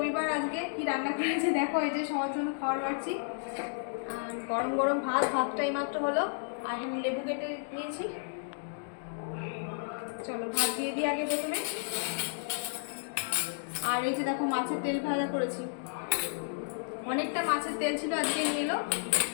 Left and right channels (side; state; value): right; silent; digital silence